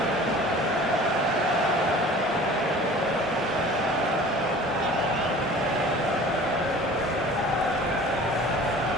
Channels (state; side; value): normal; both; correlation 0.44